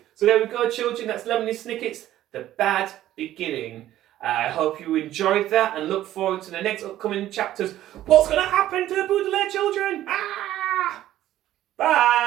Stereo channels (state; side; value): quieter; left; 13.4 dB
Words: So there we go, children. That's Lemony Snicket's The Bad Beginning. I hope you enjoyed that and look forward to the next upcoming chapters. What's going to happen to the Baudelaire children?